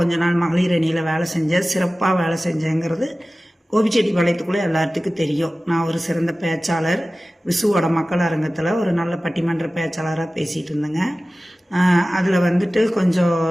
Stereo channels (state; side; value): normal; both; correlation 0.97